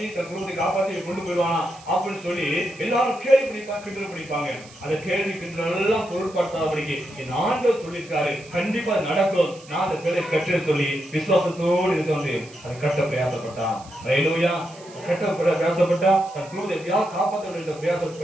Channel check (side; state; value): right; noise; hiss, 22 dB below the sound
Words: தன் குடும்பத்தை காப்பாத்தி கொண்டு போயிடுவானா அப்படின்னு சொல்லி எல்லாரும் கேள்வி பண்ணிப்பாங்க, கிண்டல் பண்ணிப்பாங்க. அந்த கேள்வி கிண்டல் எல்லாம் பொருட்படுத்தாதபடிக்கு என் ஆண்டவர் சொல்லியிருக்காரு, கண்டிப்பா நடக்கும், நான் அந்த பேரை கட்டுன்னு சொல்லி விசுவாசத்தோடு இருந்து வந்து அதை கட்ட பிரயாசப்பட்டான். ஹல்லேலூயா. கட்ட பிரயாசப்பட்டா தன் குடும்பத்தை எப்படியாவது காப்பாற்ற வேண்டும்